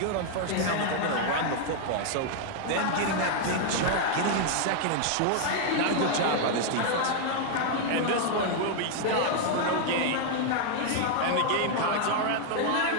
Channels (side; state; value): both; different; correlation 0.00